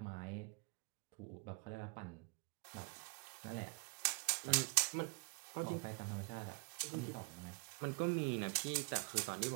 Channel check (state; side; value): quieter; left; 30.1 dB